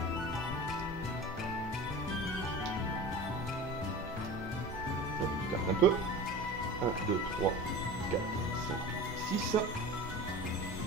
Je garde un peu. 1, 2, 3, 4, 5, 6.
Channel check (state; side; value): normal; both; correlation 0.34